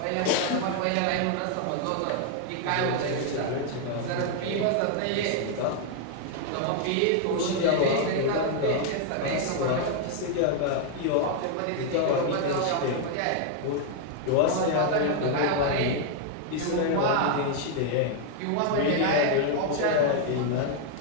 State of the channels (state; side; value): different; both; correlation 0.00